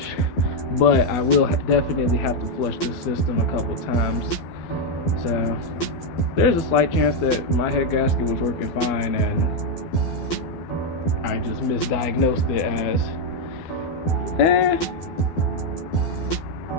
but I will definitely have to flush this system a couple times. So there's a slight chance that my head gasket was working fine and I just misdiagnosed it as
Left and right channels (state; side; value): late; right; 12 ms